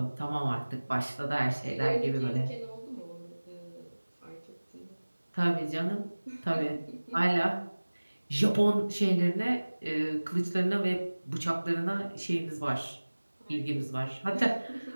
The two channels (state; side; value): inverted; both; correlation -1.00